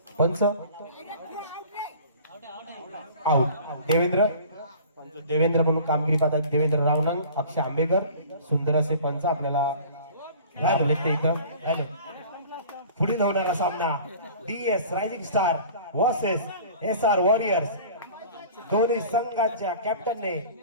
पंच आउट. देवेंद्र म्हणून कामगिरी पाहतात देवेंद्र रावनंग, अक्षय आंबेकर. सुंदर असे पंच आपल्याला इथं. पुढील होणारा सामना DS rising star versus SR warriors. दोन्ही संघाच्या कॅप्टनने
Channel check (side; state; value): both; inverted; correlation -0.44